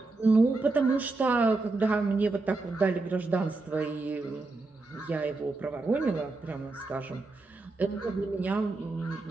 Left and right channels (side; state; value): left; quieter; 3.4 dB